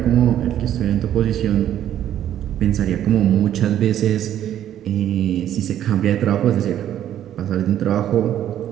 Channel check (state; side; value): quieter; left; 11.1 dB